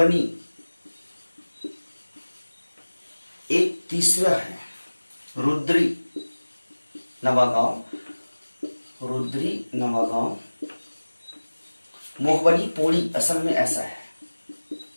एक तीसरा है रुद्री नवागांव, रुद्री नवागांव। मोहबनी पोड़ी असल में ऐसा है,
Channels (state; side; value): inverted; both; correlation -1.00